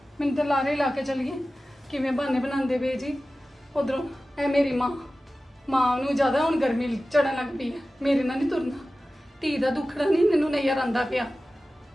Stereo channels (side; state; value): both; normal; correlation 0.95